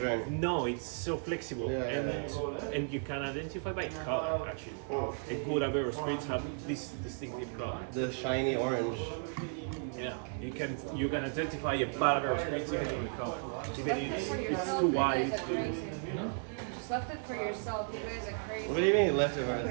drink. no, it's so flexible, and you can identify by color. Actually, a good Aperol spritz have this distinctive color. The shiny orange. Yeah, you can identify a bad Aperol spritz by the color. Even if it's too wide. Just left it for yourself. You guys are crazy. What do you mean you left it right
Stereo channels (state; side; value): silent; left; 55 dB below the other